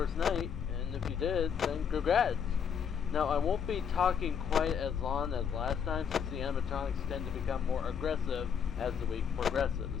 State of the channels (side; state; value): right; quieter; 7.4 dB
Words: night, and if you did, then congrats! Now, I won't be talking quite as long as last time since the animatronics tend to become more aggressive as the week